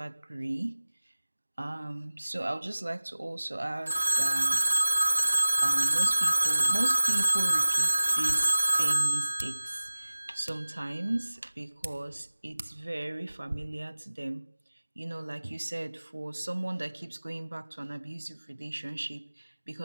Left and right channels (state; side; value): inverted; both; correlation -1.00